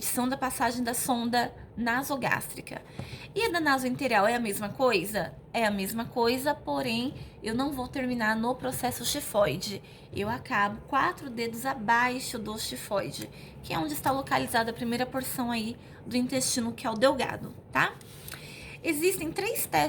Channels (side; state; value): both; identical; correlation 1.00